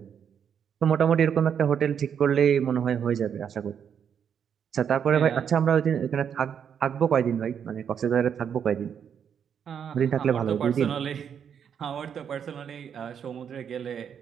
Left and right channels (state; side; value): quieter; left; 7.9 dB